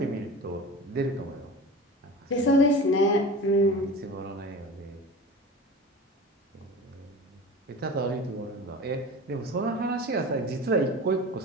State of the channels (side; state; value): both; normal; correlation 0.35